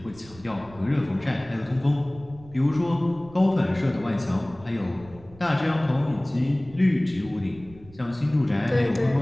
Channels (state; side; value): noise; right; rumble, 21 dB below the sound